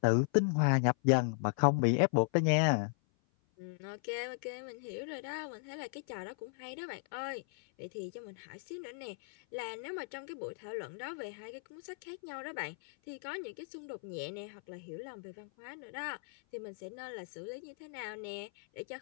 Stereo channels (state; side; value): silent; right; 53 dB below the other